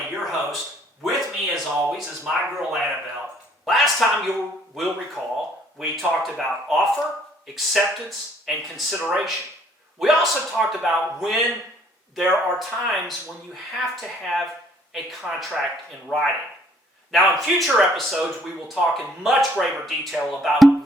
your host. With me, as always, is my girl Annabelle. Last time you will recall, we talked about offer, acceptance, and consideration. We also talked about when there are times when you have to have a contract in writing. Now, in future episodes, we will talk in much greater detail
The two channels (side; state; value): both; normal; correlation 0.61